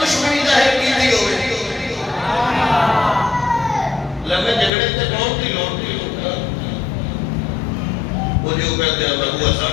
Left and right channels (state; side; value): drops out; right; at 4.7 s